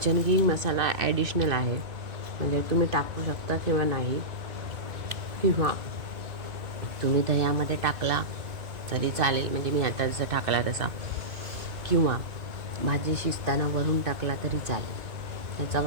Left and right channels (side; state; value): left; late; 2.4 ms